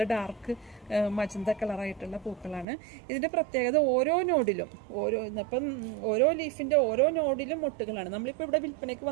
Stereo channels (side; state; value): left; drops out; at 2.7 s